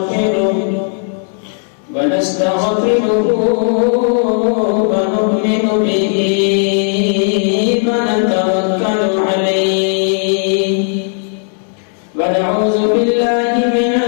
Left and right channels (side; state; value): right; silent; 56 dB below the other